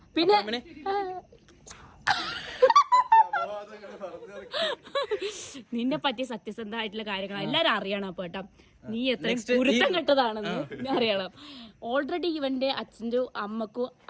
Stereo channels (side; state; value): both; identical; correlation 1.00